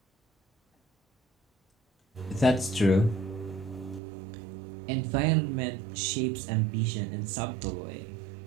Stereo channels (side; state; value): left; drops out; at 4.0 s